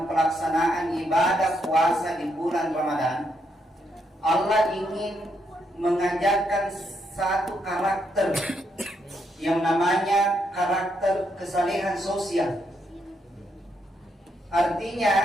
pelaksanaan ibadah puasa di bulan Ramadan, Allah ingin mengajarkan satu karakter yang namanya karakter kesalehan sosial.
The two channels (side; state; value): both; normal; correlation 0.78